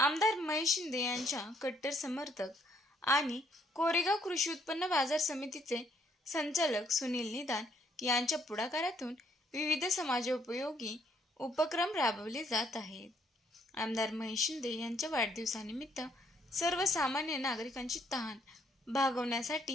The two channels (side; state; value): both; normal; correlation 0.68